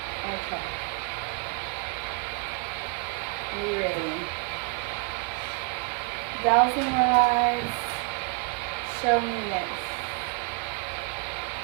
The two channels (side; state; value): left; quieter; 31.5 dB